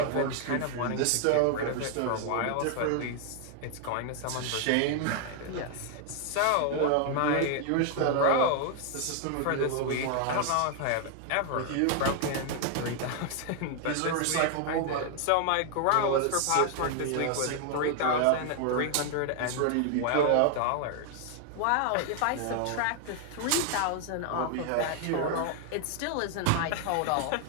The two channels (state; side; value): different; both; correlation 0.00